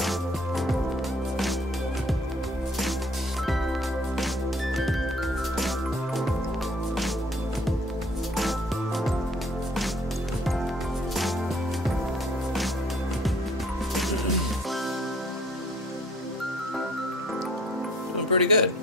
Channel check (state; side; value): normal; both; correlation 0.56